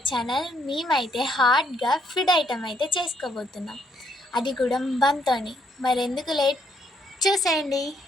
channel. మేమైతే హార్డ్గా ఫుడ్ ఐటమ్ అయితే చేసుకోబోతున్నాం, అది కూడా బంతోని. మరెందుకు లేట్, చూసేయండి.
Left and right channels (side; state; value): both; normal; correlation 0.71